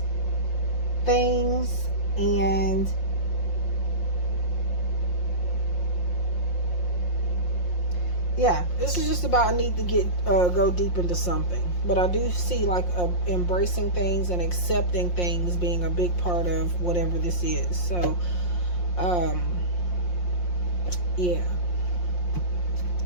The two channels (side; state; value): right; late; 5.6 ms